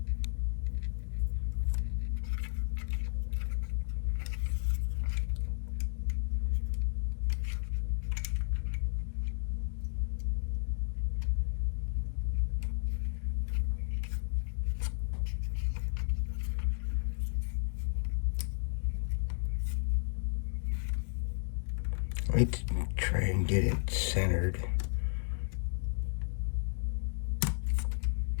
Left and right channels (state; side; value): silent; right; digital silence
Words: Let's try and get it centered.